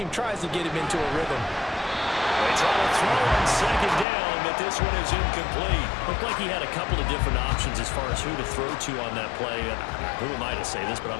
tries to get him into a rhythm. They try to throw on 2nd down, but this one is incomplete. Looked like he had a couple of different options as far as who to throw to on that play. Who am I to say this, but I'm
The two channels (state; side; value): drops out; right; at 4.0 s